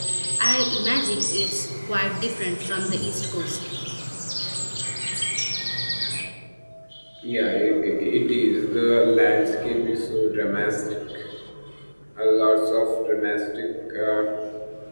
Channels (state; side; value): inverted; both; correlation -1.00